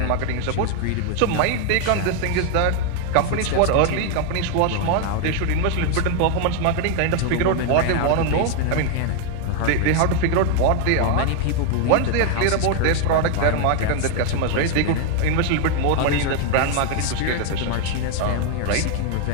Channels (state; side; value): different; both; correlation 0.01